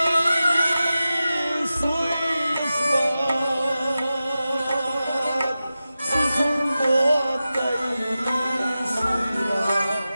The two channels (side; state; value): both; inverted; correlation -0.94